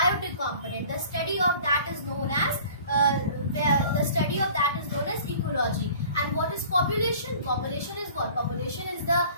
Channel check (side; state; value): both; inverted; correlation -0.47